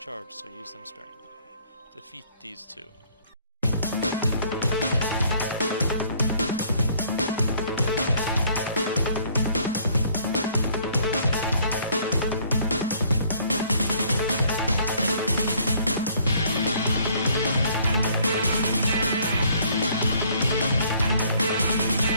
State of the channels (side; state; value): both; inverted; correlation -0.61